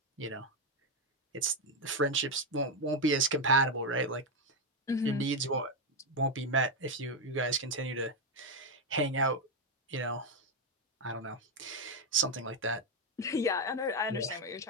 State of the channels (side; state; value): both; normal; correlation 0.05